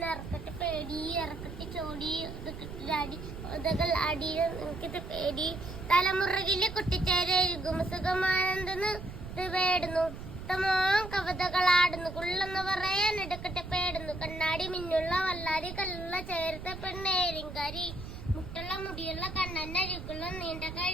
ഇറക്കട്ടെ പേടി ഇറക്കട്ടെ ചോടി അടി ഉതകൾ അടി എനിക്കിത് പേടി തലമുറകിലെ കുട്ടിച്ചേരുകും സുഖമാനന്ദന്ന് പേടുന്നു ഉത്തമോ കവിതകളാടുന്നു കുള്ളെന്ന് പറയാൻ എടുക്കട്ടെ പേടുന്നു കണ്ണാടി മിന്നുള്ള വല്ലാരി കല്ലുള്ള ചേർത്ത പെണ്ണേരിങ്കാരി മുട്ടുള്ള മുടിയുള്ള കണ്ണന്നരിക്കുള്ള നീണ്ട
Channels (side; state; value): right; noise; rumble, 10 dB below the sound